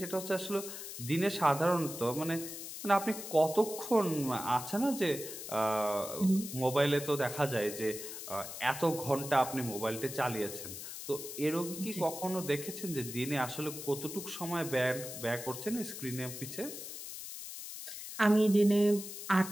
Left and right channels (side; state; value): left; noise; hiss, 9 dB below the sound